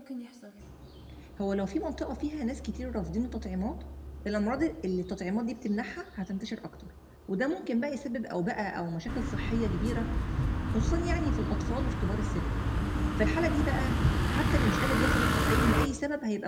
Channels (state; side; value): identical; both; correlation 1.00